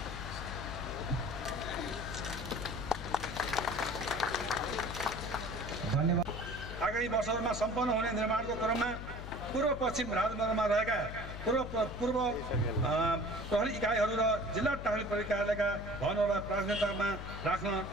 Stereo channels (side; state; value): left; noise; hum, 8 dB below the sound